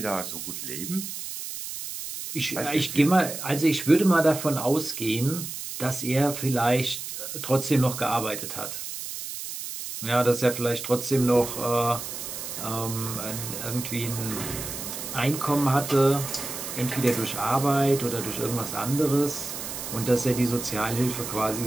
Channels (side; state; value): right; noise; hiss, 7 dB below the sound